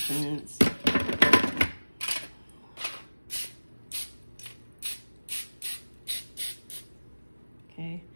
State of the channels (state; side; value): inverted; both; correlation -1.00